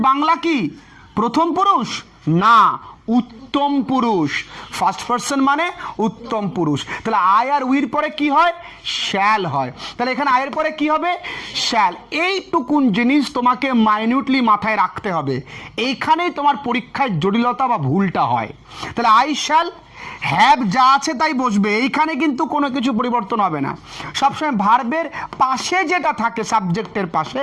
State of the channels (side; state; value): both; identical; correlation 1.00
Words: বাংলা কি? প্রথম পুরুষ না, উত্তম পুরুষ। ফার্স্ট পারসন মানে উত্তম পুরুষ। তাহলে আই আর উইর পরে কি হয়? শ্যাল হয়। তাহলে এখানে আয়ের পরে কি হবে? শ্যাল। এইটুকুন জিনিস তোমাকে মাইনিউটলি মাথায় রাখতে হবে, এইখানেই তোমার পরীক্ষায় জটিলতা বা ভুলটা হয়। তাহলে আই শ্যাল হ্যাভ যা আছে তাই বসবে, এইখানে কিন্তু কোনো কিছু পরিবর্তন হবে না। সবসময় ভার্বের পাশে যেটা থাকে সাবজেক্টের পাশে